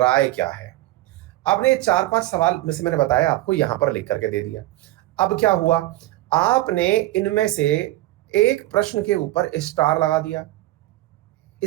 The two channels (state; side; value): quieter; left; 16.7 dB